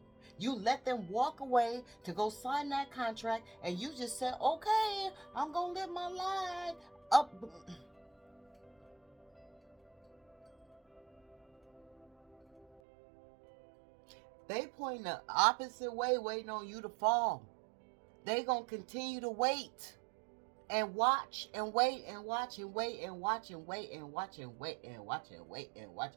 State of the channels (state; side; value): drops out; left; at 12.8 s